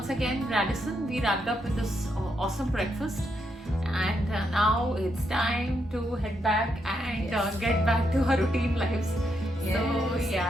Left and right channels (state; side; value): normal; both; correlation 0.80